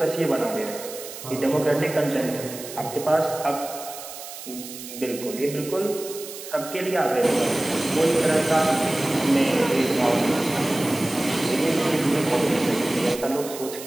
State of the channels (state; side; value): noise; right; hiss, 12 dB below the sound